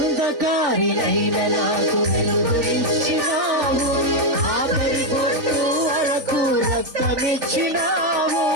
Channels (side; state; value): left; late; 3.5 ms